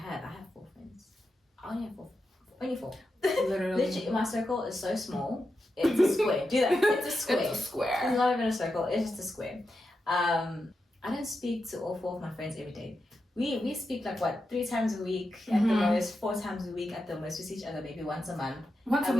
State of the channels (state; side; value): normal; both; correlation 0.88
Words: 4 friends. I only have 4. Only 4. Literally, my circle is so small. It's a square. Do that. It's a square. It's a square. It's not even a circle. It's just a square. I don't speak to all 4 of my friends every day. We speak like 3 times a week at the most, 4 times a week at the most. We see each other maybe once a month. Once a